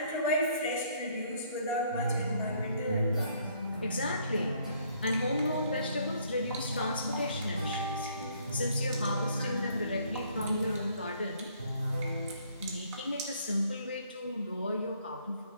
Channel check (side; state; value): both; inverted; correlation -0.64